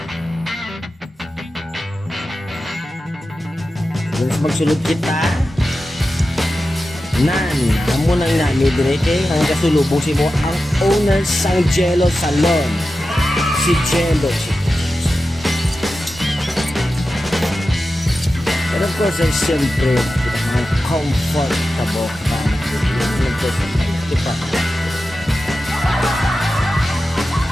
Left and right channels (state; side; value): normal; both; correlation 0.92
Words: Gusto magsulod kita. Nan, amo nang nami direte ang kasulubong si mo ang owner sang Jello Salon. Si Jello. Pero of course, ay siyempre, ang comfortable ka na diba?